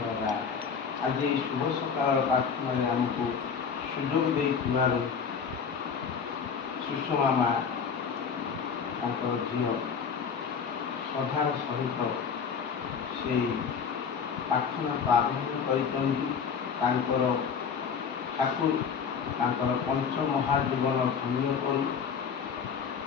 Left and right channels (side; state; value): right; quieter; 6.4 dB